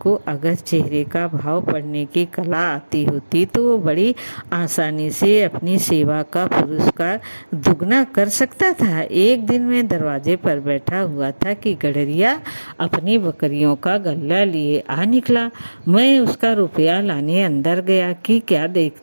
अगर चेहरे का भाव पढ़ने की कला आती होती तो वो बड़ी आसानी से अपनी सेवा का पुरस्कार दुगना कर सकता था। एक दिन मैं दरवाजे पर बैठा हुआ था कि गडरिया अपनी बकरियों का गल्ला लिए आ निकला। मैं उसका रुपया लाने अंदर गया कि क्या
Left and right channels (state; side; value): inverted; both; correlation -1.00